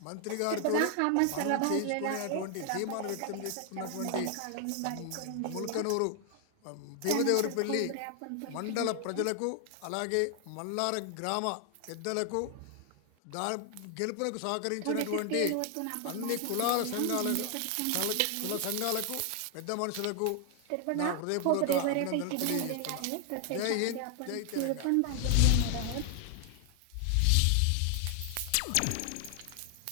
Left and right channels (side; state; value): both; different; correlation 0.00